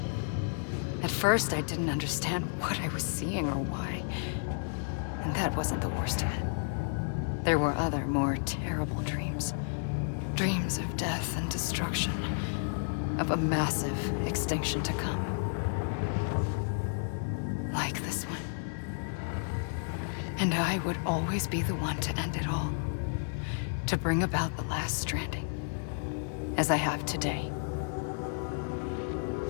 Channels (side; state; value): right; silent; digital silence